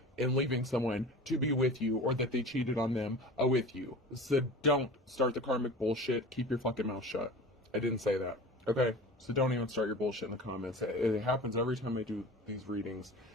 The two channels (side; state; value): both; normal; correlation 0.37